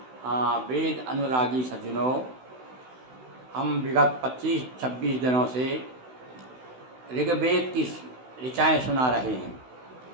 हाँ, वेद अनुरागी सज्जनों, हम विगत 25-26 दिनों से ऋग्वेद की ऋचाएँ सुना रहे हैं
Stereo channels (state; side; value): late; left; 16 ms